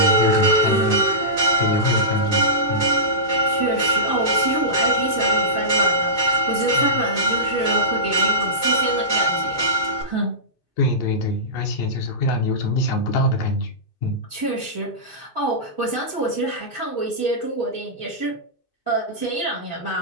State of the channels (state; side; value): late; right; 2.6 ms